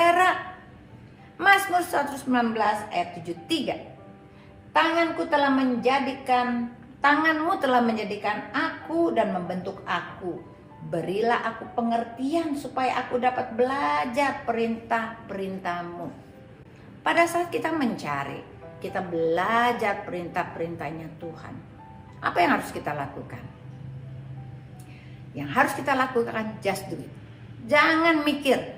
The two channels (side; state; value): both; identical; correlation 1.00